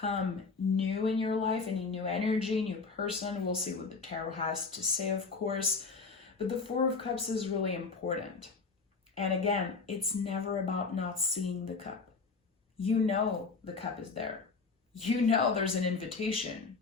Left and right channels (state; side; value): quieter; right; 4.5 dB